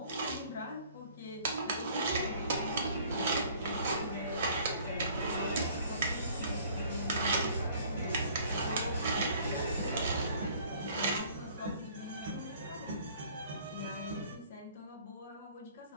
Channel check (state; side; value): inverted; both; correlation -0.55